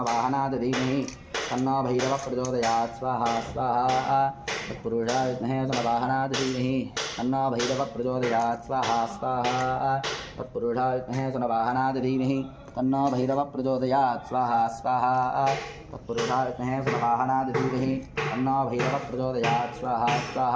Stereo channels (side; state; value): both; identical; correlation 1.00